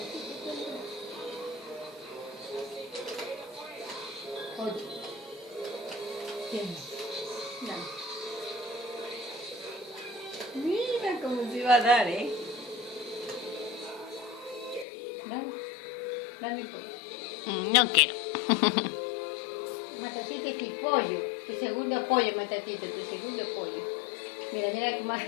oye. ¿Quién? No. Mira cómo se iba a dar, ¿eh? Dame pollo. No quiero. Matatita es tu pollo. Tu segundo pollo, Matatita, tu segundo pollo. Mira, mira cómo...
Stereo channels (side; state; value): right; drops out; at 14.9 s